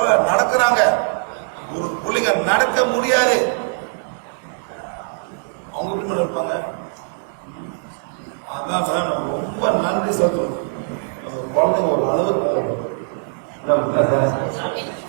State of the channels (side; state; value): left; silent; digital silence